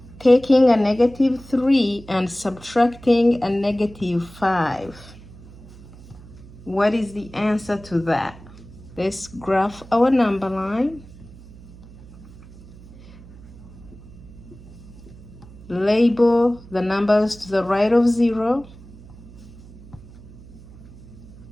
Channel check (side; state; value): right; noise; hum, 19 dB below the sound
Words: taking a -3 and subtracting a -5. What is the answer to that? Let's graph our number line. Label the numbers to the right of 0.